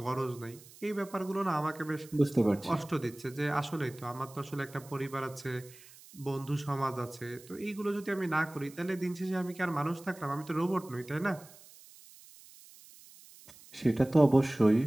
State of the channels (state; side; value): noise; right; hiss, 21 dB below the sound